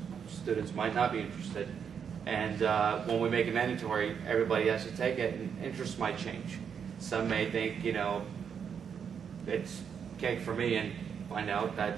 students might not be interested. And when we make it mandatory, everybody has to take it, and interests might change. Some may think, you know, it's cake for me, and find out that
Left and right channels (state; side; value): quieter; left; 7.2 dB